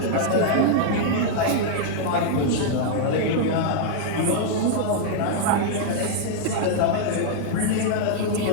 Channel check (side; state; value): both; different; correlation -0.01